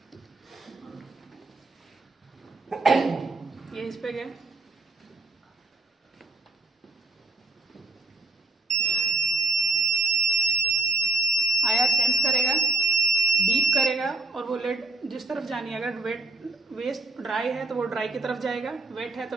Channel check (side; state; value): left; quieter; 3.5 dB